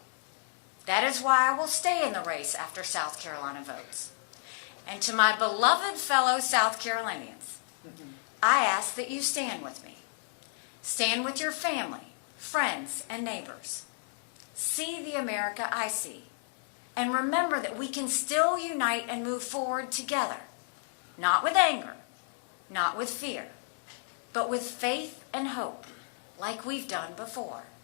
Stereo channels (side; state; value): right; silent; digital silence